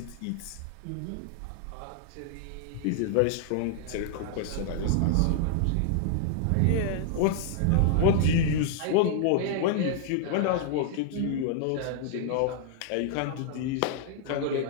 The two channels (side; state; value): both; different; correlation -0.01